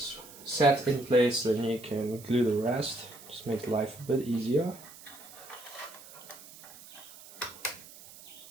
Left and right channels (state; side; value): noise; right; hiss, 18 dB below the sound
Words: set in place, then you can glue the rest. Just makes life a bit easier.